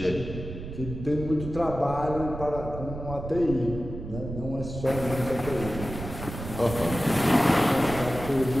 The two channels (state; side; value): noise; right; rumble, 9 dB below the sound